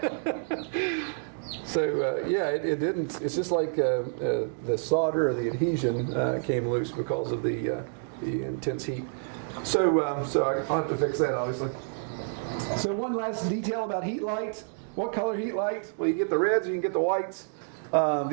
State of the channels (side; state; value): left; silent; digital silence